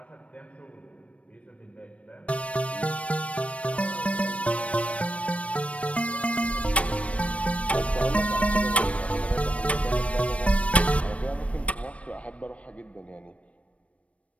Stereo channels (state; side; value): late; right; 0.064 ms